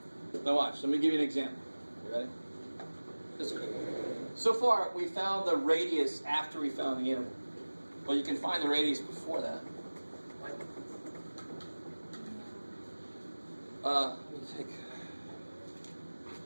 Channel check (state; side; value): inverted; both; correlation -1.00